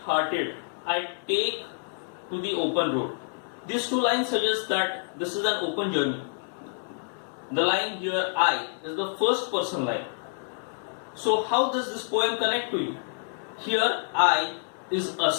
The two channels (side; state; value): right; silent; 60 dB below the other